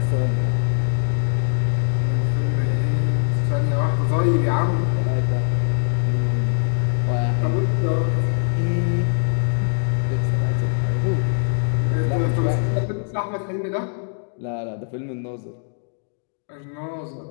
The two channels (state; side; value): silent; right; digital silence